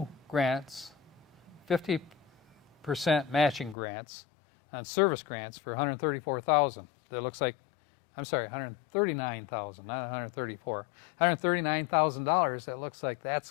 grants, 50% matching grants on service grants for $134,000. That looks like, I'm sorry, $139,000, not 134. $139,000. That looks like that's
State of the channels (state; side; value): drops out; right; at 3.8 s